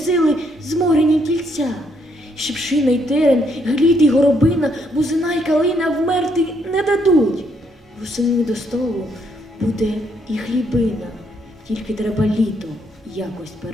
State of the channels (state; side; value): normal; both; correlation 0.73